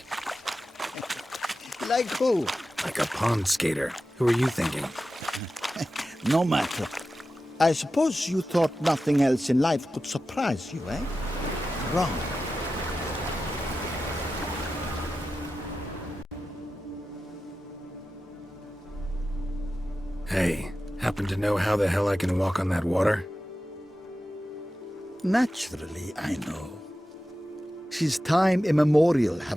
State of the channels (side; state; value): both; normal; correlation 0.93